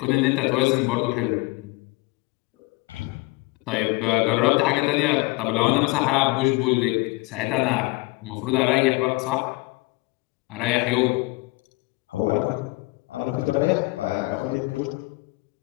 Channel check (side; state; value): right; quieter; 23.8 dB